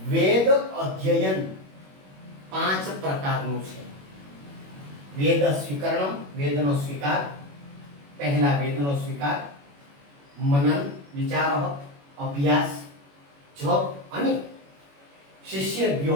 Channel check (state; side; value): late; left; 21 ms